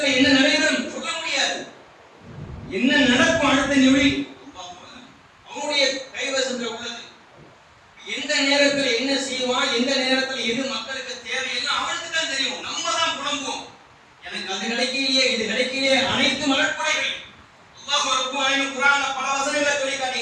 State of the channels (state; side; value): identical; both; correlation 1.00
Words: என்ன நடைபெறும் சொல்ல முடியாது. என்ன நடக்கும் அடுத்த நிமிடி அவனுடைய கைவசத்துல உள்ளது. எந்த நேரத்தில் என்ன செய்வான், எந்த நேரத்தில் எது மக்களுக்கு தேவையில்லை அவனுக்கு தான் தெரியும். நம்ம தான் புலம்புவோம், எனக்கு அது கிடைக்கலையே இது கிடைக்கலையே. அனைத்து அருட்படைகள் அல்லாஹ் ரப்பல் ஆலமீன் குர்ஆன்ல பல வசனங்களை சொல்லி